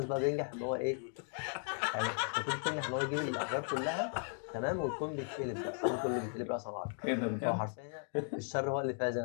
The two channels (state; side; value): silent; right; 53 dB below the other